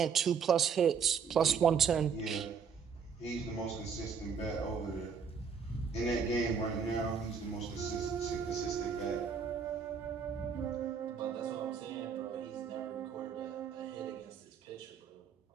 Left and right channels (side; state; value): left; quieter; 6.4 dB